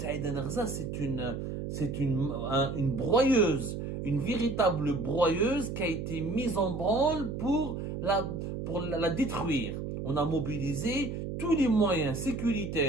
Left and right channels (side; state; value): right; noise; hum, 5 dB below the sound